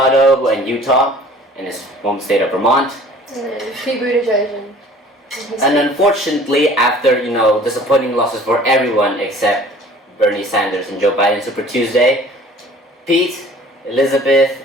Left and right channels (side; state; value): both; normal; correlation 0.49